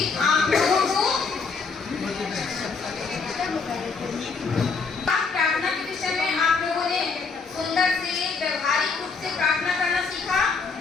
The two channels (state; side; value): quieter; right; 4.8 dB